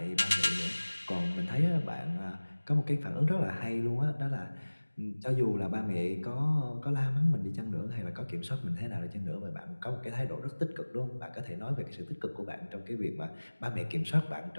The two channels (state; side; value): inverted; both; correlation -1.00